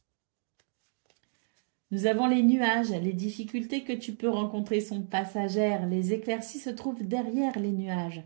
Nous avons les nuages, les difficultés que tu peux rencontrer sont passagères, les éclaircies se trouvent derrière les nuages.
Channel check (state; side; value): silent; left; digital silence